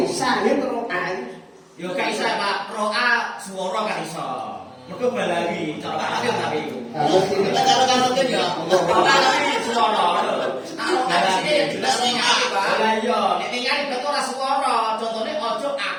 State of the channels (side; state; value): both; identical; correlation 1.00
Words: sahid roa. Yo gak iso Pak, roa swara gak iso. Mergo balari, cara tapi. Kalau kan ya. Balari swara. Balari jelas ningali, Pak. Lah iya, nek ningali betul ora swara. Contone ojo